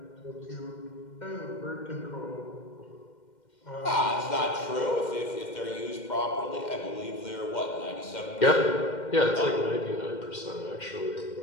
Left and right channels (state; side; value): late; right; 2.1 ms